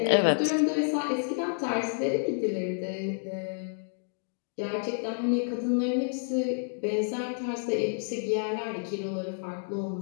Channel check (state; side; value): silent; right; digital silence